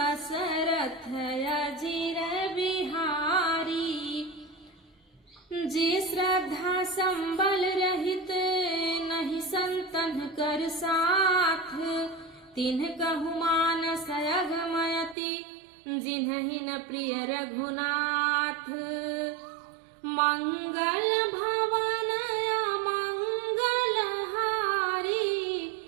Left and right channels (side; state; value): left; drops out; at 15.2 s